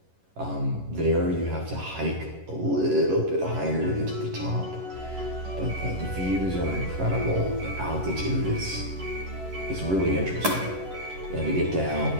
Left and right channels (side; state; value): left; late; 11 ms